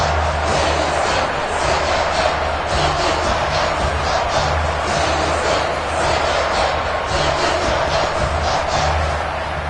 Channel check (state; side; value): identical; both; correlation 1.00